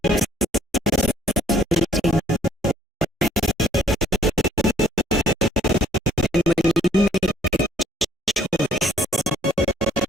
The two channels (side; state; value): both; normal; correlation 0.62